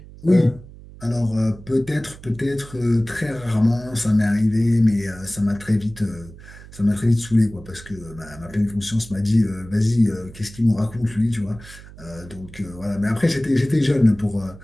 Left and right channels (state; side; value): noise; right; hum, 18 dB below the sound